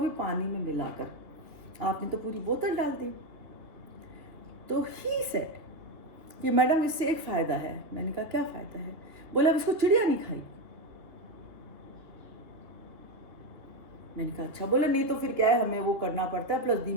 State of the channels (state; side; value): late; left; 2.8 ms